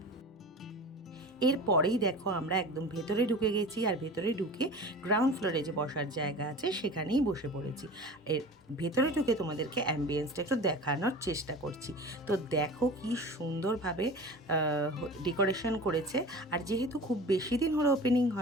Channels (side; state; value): both; normal; correlation 0.36